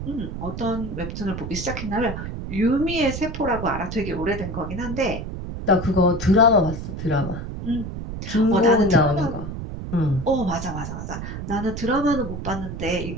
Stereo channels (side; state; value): right; noise; rumble, 7 dB below the sound